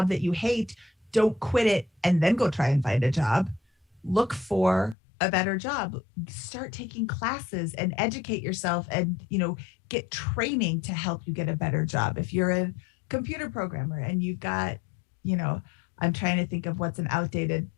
that you hate, don't quit it and then go try and find a job. Look for a better job. Start taking classes and educate yourself, and, get training to help you get a better job. If you're a computer programmer and you've got, I'm trying to think of what's an outdated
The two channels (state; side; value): drops out; right; at 5.0 s